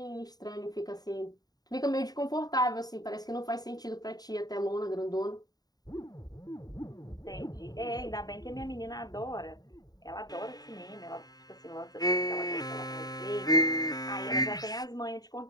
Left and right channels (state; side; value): late; right; 0.19 ms